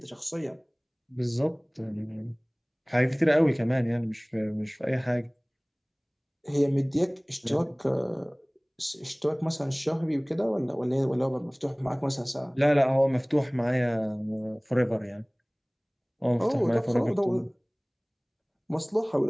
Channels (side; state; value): both; identical; correlation 1.00